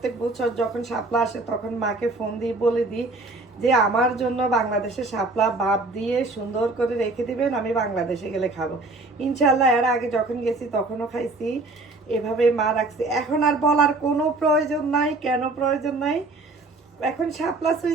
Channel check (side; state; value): left; quieter; 3.2 dB